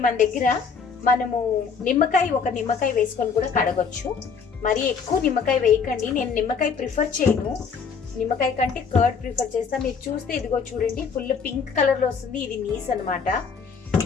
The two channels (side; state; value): right; quieter; 5.8 dB